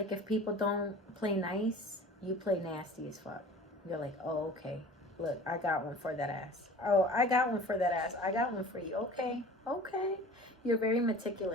if people don't play nice, you play nasty as fuck. You're like, oh, okay. Look, I got one for that ass. Oh, I got one for that ass. I got one for you. Okay, okay. You're very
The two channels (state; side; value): normal; both; correlation 0.41